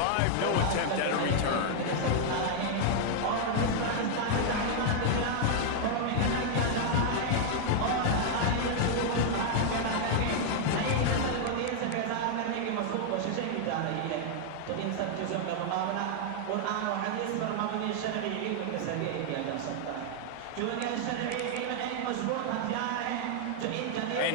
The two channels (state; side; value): different; both; correlation 0.00